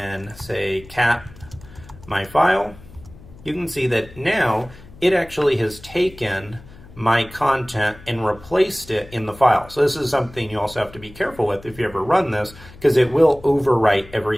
say cat my file, you can see that now it actually has taken my content and replaced it in the file. So this is something you also have to be careful with if you ever run this, because it will overwrite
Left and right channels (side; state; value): left; noise; hum, 20 dB below the sound